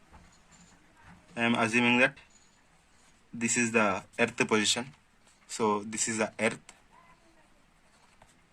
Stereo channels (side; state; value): both; identical; correlation 1.00